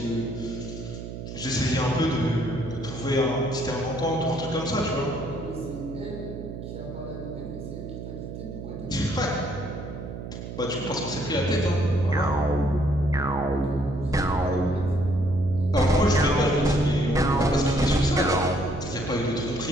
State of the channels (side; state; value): right; noise; hum, 9 dB below the sound